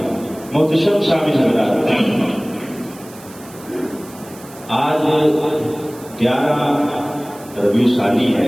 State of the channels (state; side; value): noise; right; hiss, 21 dB below the sound